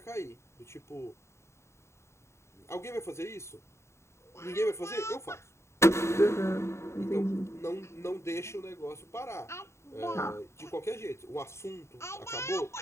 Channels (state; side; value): late; right; 0.13 ms